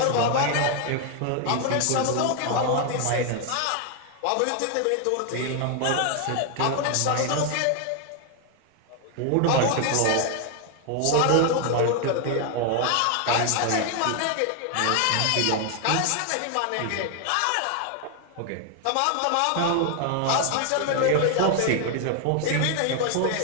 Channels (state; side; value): different; both; correlation 0.01